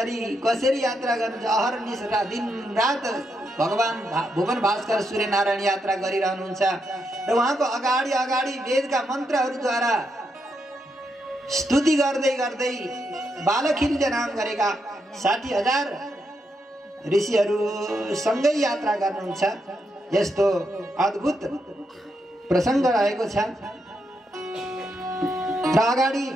कसरी यात्रा गर्नुहुन्छ। अहर्निश दिन रात भगवान भुवन भास्कर सूर्य नारायण यात्रा गरिरहनुहुन्छ र उहाँको अगाडि अगाडि वेदका मन्त्रहरूद्वारा स्तुति गर्दै गर्दै बालखिल्य नाम गरेका 60,000 ऋषिहरू सँगै यात्रा गर्नुहुन्छ। यस्तो अद्भुत प्रसङ्ग रहेको छ। र अगाडि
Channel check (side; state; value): both; normal; correlation 0.81